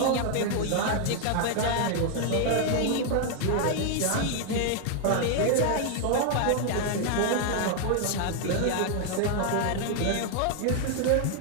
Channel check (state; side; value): different; both; correlation 0.00